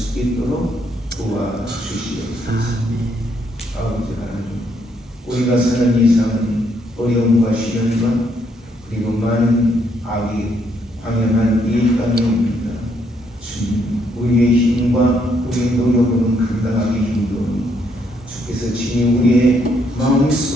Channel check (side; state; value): both; normal; correlation 0.72